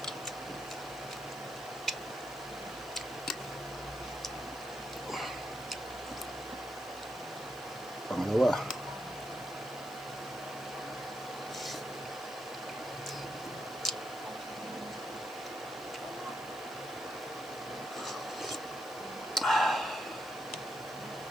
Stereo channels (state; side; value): noise; left; hiss, 18 dB below the sound